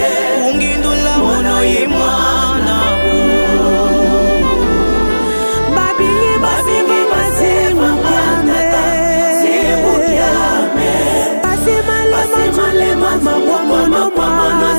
ungindula mono imwana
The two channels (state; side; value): inverted; both; correlation -1.00